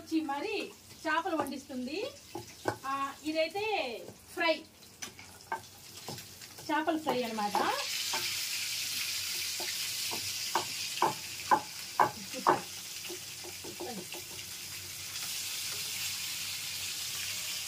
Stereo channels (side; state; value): both; identical; correlation 1.00